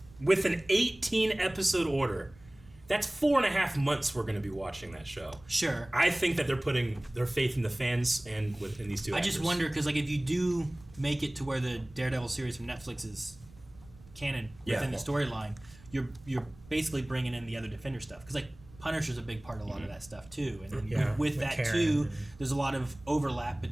with an 18 episode order. That's 4.5 months we're going to be watching that show. Sure. I think that they're putting their faith in the fans and in these two. I just wonder because like if you do make it to where the Daredevil series from Netflix is canon within the storyline, you're basically bringing in the other Defender stuff because like Punisher's a big part of a lot of that stuff too, and then with that Karen too, there's a lot of overlap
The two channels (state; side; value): noise; right; rumble, 23 dB below the sound